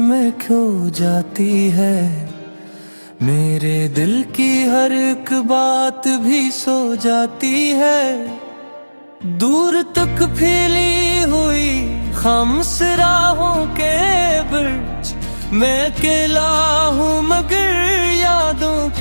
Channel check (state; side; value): inverted; both; correlation -1.00